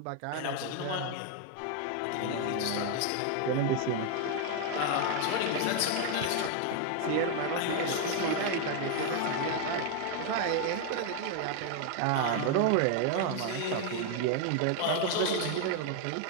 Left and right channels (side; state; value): both; different; correlation 0.00